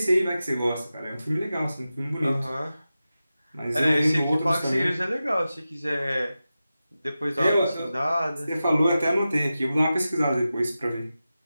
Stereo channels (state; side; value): inverted; both; correlation -0.93